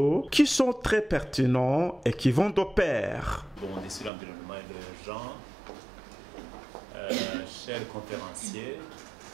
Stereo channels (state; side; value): drops out; left; at 4.1 s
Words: qui sont très pertinents et qui vont de pair. Bon, on est sur l'environnement et le genre. Chers conférenciers,